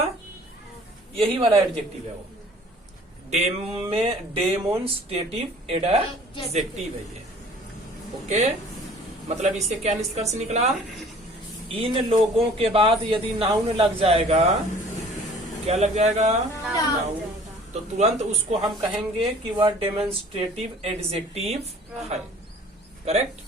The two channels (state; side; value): normal; both; correlation 0.51